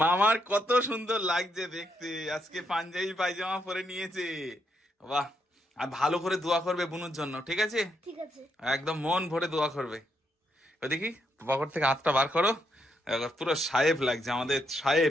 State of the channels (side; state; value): both; normal; correlation 0.78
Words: মামার কত সুন্দর লাগছে দেখতে, আজকে পাঞ্জাবি পায়জামা পরে নিয়েছে। বাহ, আর ভালো করে দোয়া করবে বুনুর জন্য, ঠিক আছে? ঠিক আছে। একদম মন ভরে দোয়া করবে। ওই দেখি পকেট থেকে হাতটা বার করো, পুরো সাহেব লাগছে আমাদের